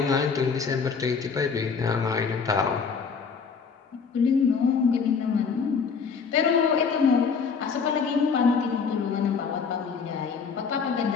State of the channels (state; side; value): quieter; right; 5.7 dB